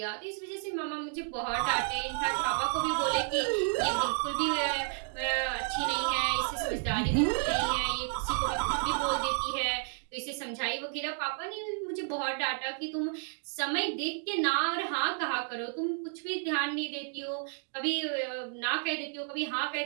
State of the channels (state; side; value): silent; left; 57 dB below the other